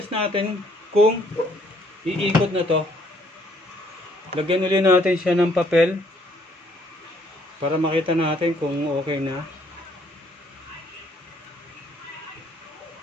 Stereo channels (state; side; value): normal; both; correlation 0.65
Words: natin kung iikot na to. Lagyan ulit natin siya ng papel para makita natin kung okay na.